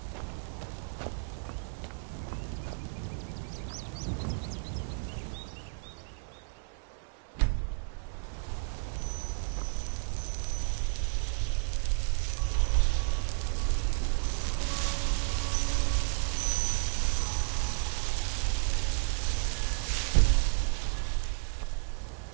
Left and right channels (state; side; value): silent; left; digital silence